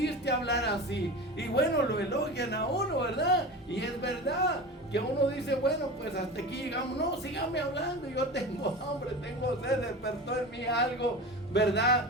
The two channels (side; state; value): both; normal; correlation 0.30